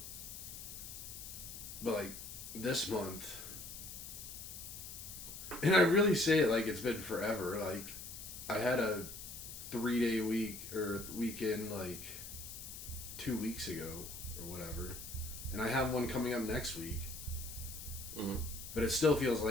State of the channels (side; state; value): left; noise; hiss, 10 dB below the sound